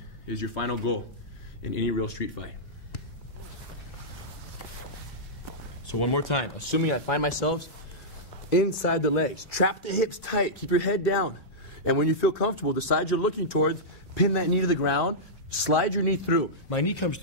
is your final goal in any real street fight. So one more time, assuming I find myself inside the legs, trap the hips tight, keep your head down. And when you feel comfortable, the side you're looking towards, pin that knee to the ground, slide your knee through. My knee comes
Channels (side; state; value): both; normal; correlation -0.12